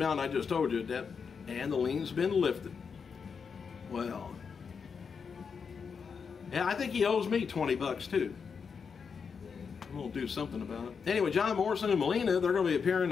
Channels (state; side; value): quieter; right; 6.0 dB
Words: I just told you, that, and the lien's been lifted. Well, yeah, I think he owes me 20 bucks too. We'll do something about it. Anyway, John Morrison and Melina, they're going to be appearing